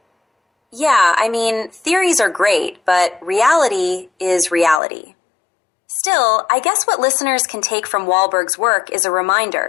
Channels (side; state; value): right; drops out; at 4.8 s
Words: Yeah, I mean, theories are great, but reality is reality. Still, I guess what listeners can take from Wahlberg's work is a